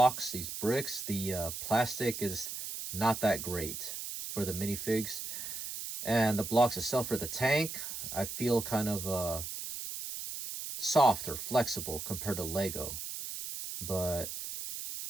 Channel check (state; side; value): noise; right; hiss, 7 dB below the sound